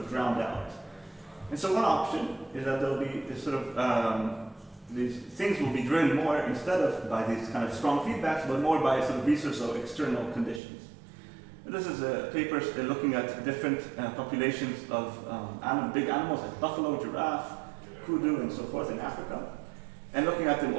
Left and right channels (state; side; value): drops out; left; at 10.6 s